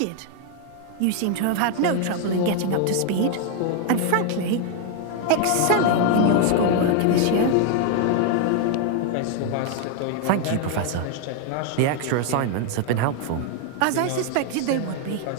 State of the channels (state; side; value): different; both; correlation 0.00